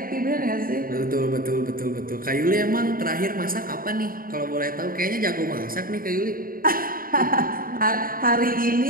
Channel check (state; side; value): late; left; 0.41 ms